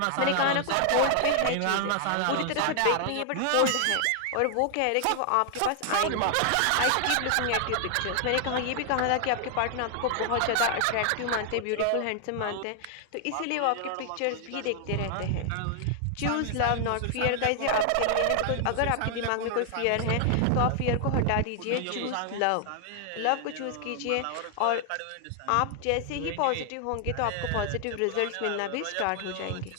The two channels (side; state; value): both; different; correlation 0.00